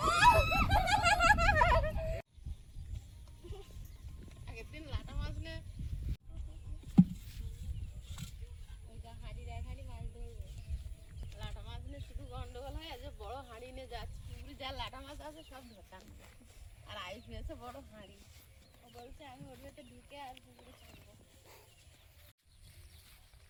আগের দিন লাটা মাছ নে হাঁড়ির এক হাঁড়ি মাছ ধরবো। লাটা মাছ নিয়ে শুধু গন্ডগোল হয়, আজ বড় হাঁড়ি নিয়ে যাচ্ছে পুকুরে, যা লাটা মাছ আছে সব ধরতাম। আর আয়ুষ নিয়েছে বড় হাঁড়ি, ও বলছে আমি ওর ভেতরে ঢুকে আর পুকুরে ছাড়বো।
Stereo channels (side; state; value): both; identical; correlation 1.00